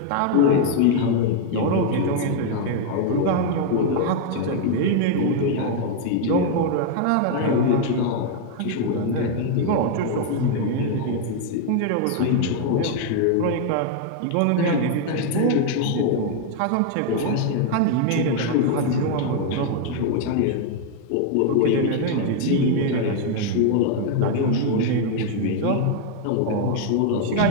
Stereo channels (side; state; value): both; different; correlation 0.00